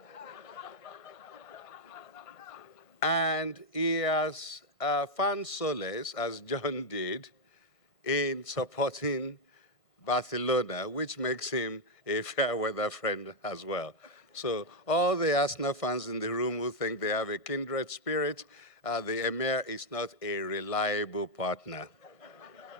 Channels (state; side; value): late; right; 1.5 ms